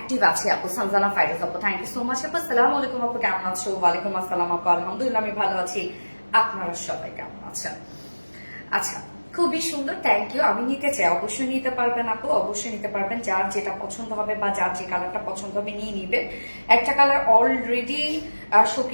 আছে আপু, সানজানা ফাইরুজ আপু, থ্যাংক ইউ সো মাচ আপু। আসসালামু আলাইকুম আপু, কেমন আছো? ওয়ালাইকুম আসসালাম আপু, আলহামদুলিল্লাহ আমি ভালো আছি, আপনারা সবাই কেমন আছেন? আচ্ছা, খুবই সুন্দর, থ্যাংক ইউ। আমি নিতে চাই, অবশ্যই নিতে পারবেন আপু, অবশ্যই নিতে পারবেন। যার যেটা পছন্দ হবে বা যার যে কালারটা পছন্দ হবে নিয়ে নিবেন। একটা কালার অলরেডি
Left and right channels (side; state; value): both; inverted; correlation -1.00